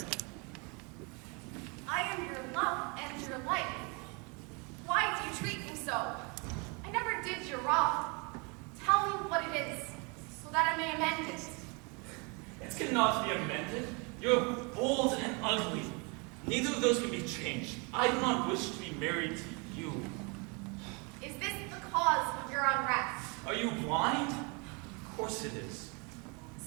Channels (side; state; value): left; quieter; 31.5 dB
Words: I am your love and your life. Why do you treat me so? I never did you wrong. Tell me what it is, so that I may amend it. It cannot be amended. You're bold and ugly. Neither of those can be changed. I do not wish to be married to you. Is this the cause of your unrest? Are you blind? Of course it is.